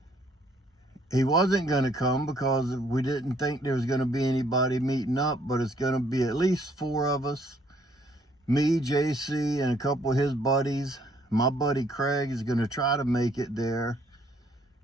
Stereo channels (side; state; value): both; normal; correlation 0.65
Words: he wasn't going to come because we didn't think there was going to be anybody meeting up, but it's going to be at least 4 of us. Me, JC, and a couple of his buddies. My buddy Craig is going to try to make it there.